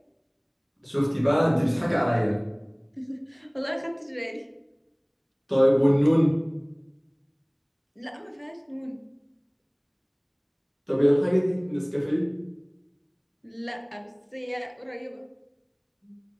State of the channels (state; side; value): identical; both; correlation 1.00